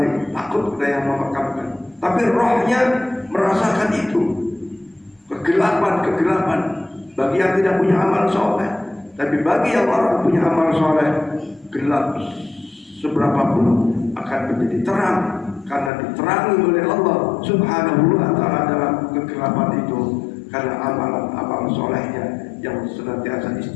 takut kita yang memakamkan. Tapi rohnya merasakan itu, kegelapan bagi yang tidak punya amal soleh. Tapi bagi yang orang punya amal soleh, gelap seberapapun akan menjadi terang karena diterangi oleh Allah Subhanahu wa Ta'ala dalam kegelapan itu, karena amalan solehnya yang senantiasa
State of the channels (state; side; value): drops out; right; at 15.9 s